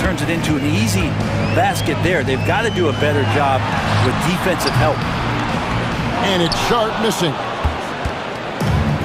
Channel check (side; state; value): both; identical; correlation 1.00